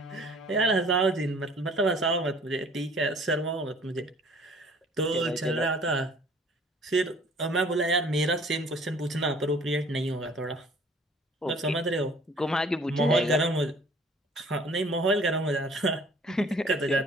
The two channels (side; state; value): both; normal; correlation 0.53